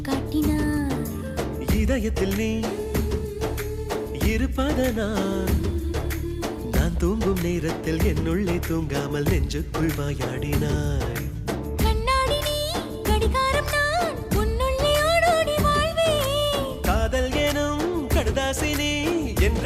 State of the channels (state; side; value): identical; both; correlation 1.00